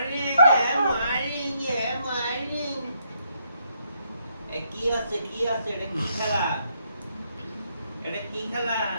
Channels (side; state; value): both; inverted; correlation -0.75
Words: morning morning. কি আছে কি আছে? এটা কি খেলা? এটা কি খেলা?